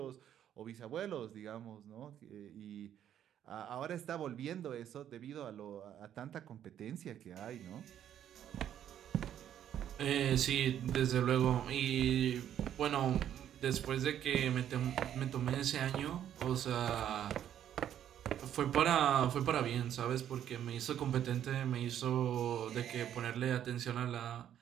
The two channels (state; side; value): quieter; left; 10.4 dB